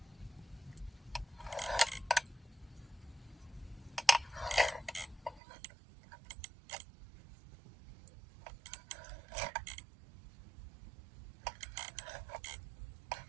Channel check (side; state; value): left; drops out; at 5.4 s